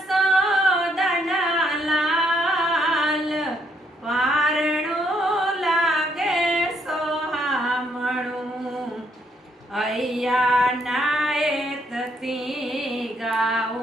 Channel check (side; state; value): both; normal; correlation 0.71